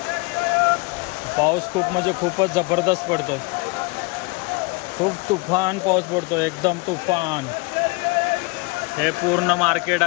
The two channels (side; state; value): right; quieter; 27.4 dB